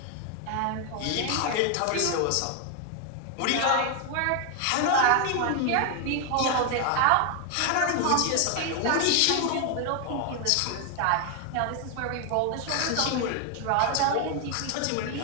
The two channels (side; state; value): both; different; correlation 0.00